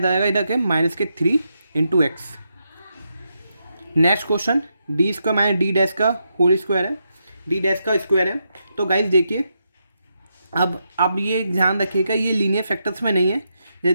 इधर के माइनस के 3 into x. Next question D square minus D dash का होल स्क्वायर है, डी डैश का स्क्वायर है। तो गाइस देखिए अब ये ध्यान रखिएगा ये लीनियर फैक्टर्स में नहीं है।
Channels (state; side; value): inverted; both; correlation -0.83